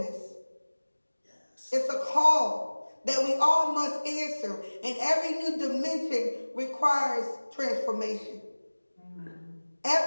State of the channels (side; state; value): both; inverted; correlation -1.00